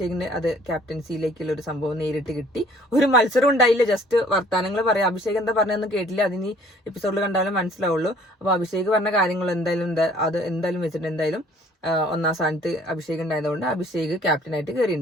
അത് ക്യാപ്റ്റൻസിയിലേക്കുള്ള ഒരു സംഭവം നേരിട്ട് കിട്ടി. ഒരു മത്സരം ഉണ്ടായില്ല, ജസ്റ്റ് വർത്താനങ്ങൾ പറയാം. അഭിഷേക് എന്താ പറഞ്ഞതെന്ന് കേട്ടില്ല, അതിന് എപ്പിസോഡിൽ കണ്ടാലും മനസ്സിലാവുള്ളൂ. അപ്പൊ അഭിഷേക് പറഞ്ഞ കാര്യങ്ങൾ എന്തായാലും വെച്ചിട്ട് എന്തായാലും 1ാം സ്ഥാനത്ത് അഭിഷേക് ഉണ്ടായതുകൊണ്ട് അഭിഷേക് ക്യാപ്റ്റനായിട്ട്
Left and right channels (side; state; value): both; normal; correlation 0.56